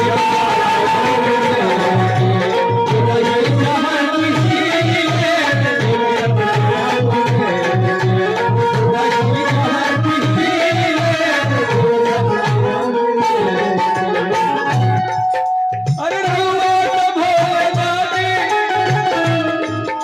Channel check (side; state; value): both; identical; correlation 1.00